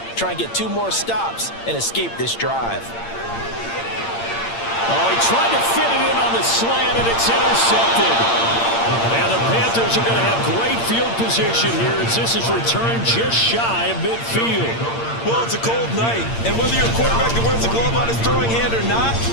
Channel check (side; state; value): right; late; 8.7 ms